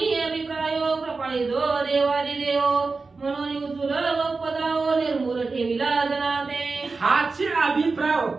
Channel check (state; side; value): quieter; left; 4.1 dB